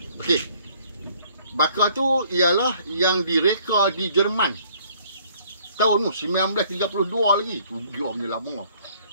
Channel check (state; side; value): inverted; both; correlation -0.60